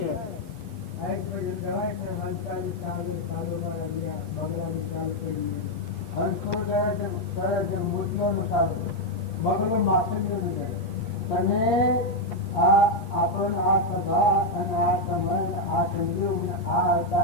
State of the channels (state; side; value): late; right; 8.9 ms